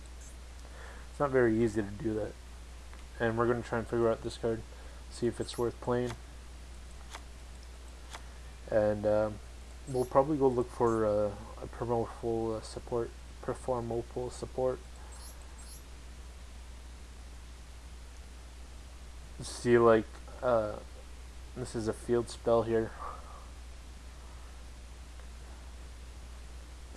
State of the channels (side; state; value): both; identical; correlation 1.00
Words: not very easy to do that. And we're going to try and figure out this card, see if it's worth playing. And we'll probably go look for a Performopal support. See, like, this is a field spell here.